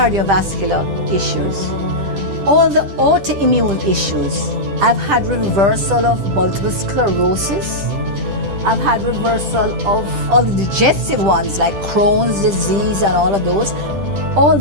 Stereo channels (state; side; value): late; left; 10 ms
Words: issues. all the autoimmune issues. I've had reversal of multiple sclerosis. I've had reversal of all the digestive ones like Crohn's disease and all of those. All